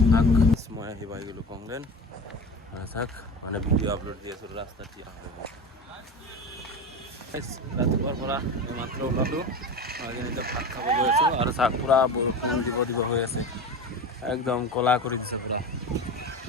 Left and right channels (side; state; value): both; normal; correlation 0.29